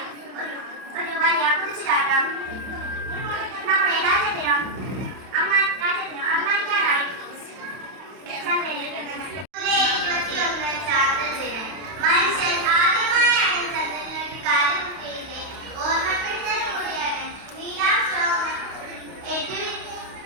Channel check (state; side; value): late; left; 31 ms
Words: ഒരു വലിയ കുതിച്ചുചാട്ടം. നമ്മുടെ രാജ്യത്തിനും അഭിമാനിക്കാനായി ചന്ദ്രനിൽ ജൂലൈ 21 ചാന്ദ്രദിനം. മനുഷ്യൻ ആദ്യമായാണ് ചന്ദ്രനിലേക്ക് കാലുകുത്തിയതിന്റെ ഓർമ്മപ്പെടുത്തൽ കൂടിയാണ്. Neil Armstrong